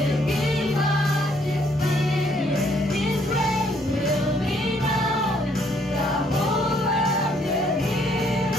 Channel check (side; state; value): both; normal; correlation 0.67